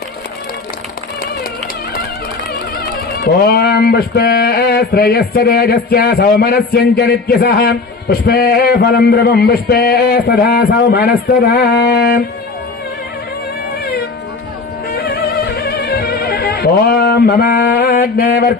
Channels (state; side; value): quieter; right; 4.0 dB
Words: ఓం పుష్పే శ్రేయస్య తేజస్య సౌమనస్యంచ నిత్యసః పుష్పే ఫలం ద్రవం పుష్పే సదా సౌమనస్తదా. ఓం మమాగ్నే